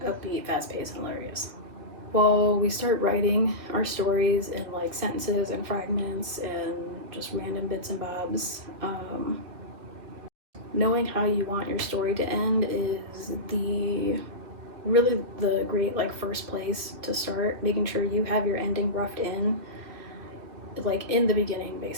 upbeat, fast-paced, and hilarious. Well, we start writing our stories in like sentences and fragments and just random bits and bobs. Knowing how you want your story to end is really the great like first place to start, making sure you have your ending roughed in like in the beginning,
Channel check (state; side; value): late; left; 2.6 ms